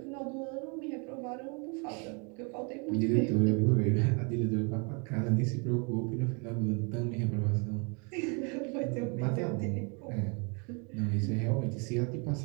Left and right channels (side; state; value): left; quieter; 34.2 dB